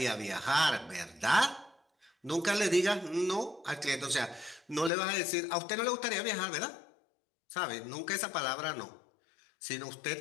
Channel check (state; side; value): drops out; right; at 4.9 s